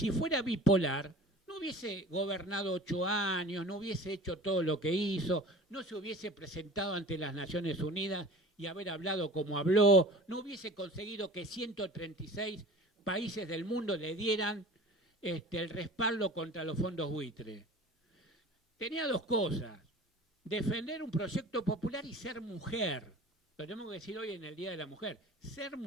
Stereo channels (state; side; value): normal; both; correlation 0.41